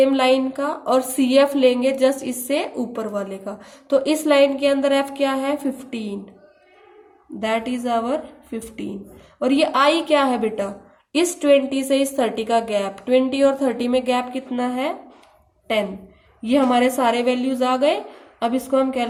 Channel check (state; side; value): identical; both; correlation 1.00